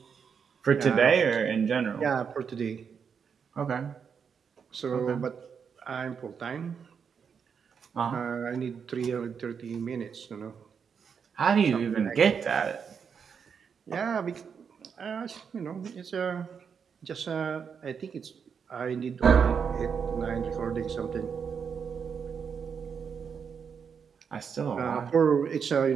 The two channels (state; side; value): quieter; left; 6.6 dB